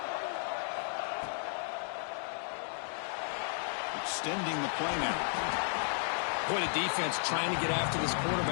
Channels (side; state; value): right; silent; digital silence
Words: extending the play now. Boy, the defense trying to get after this